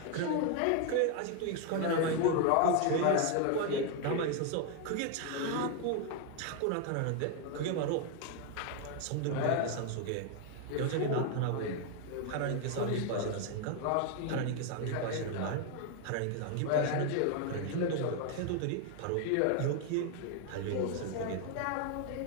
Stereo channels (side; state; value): both; different; correlation 0.01